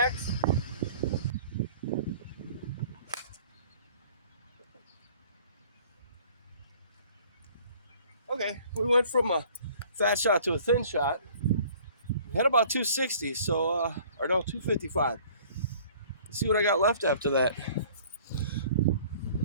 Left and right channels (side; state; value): both; inverted; correlation -0.52